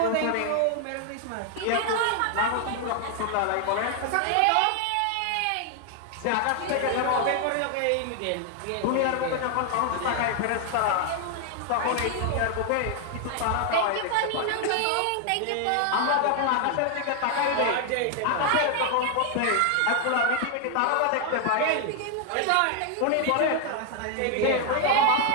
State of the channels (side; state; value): both; different; correlation 0.00